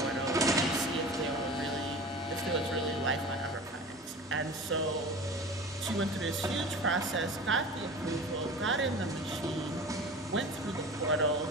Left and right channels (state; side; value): normal; both; correlation 0.36